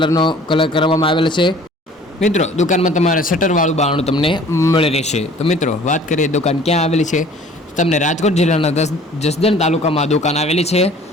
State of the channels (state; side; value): normal; both; correlation 0.50